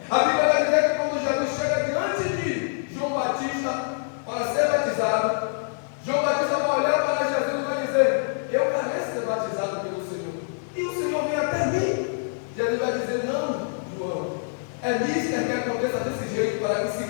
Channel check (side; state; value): right; silent; 62 dB below the other